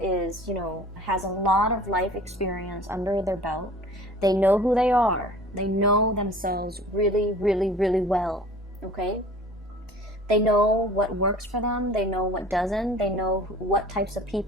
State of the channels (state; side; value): normal; both; correlation 0.45